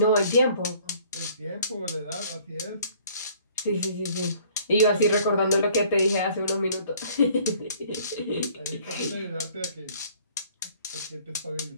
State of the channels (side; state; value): both; inverted; correlation -0.56